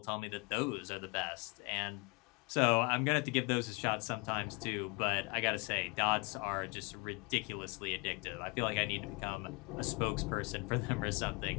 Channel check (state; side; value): quieter; right; 29.1 dB